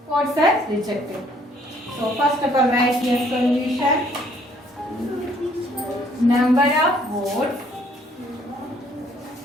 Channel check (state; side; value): normal; both; correlation 0.63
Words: votes are rejected. So first of all, write here solution. Number of votes